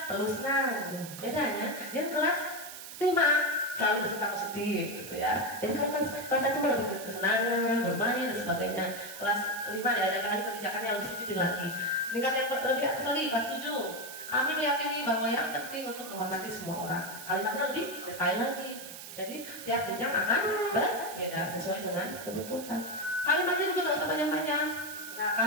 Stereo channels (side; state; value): right; noise; hiss, 12 dB below the sound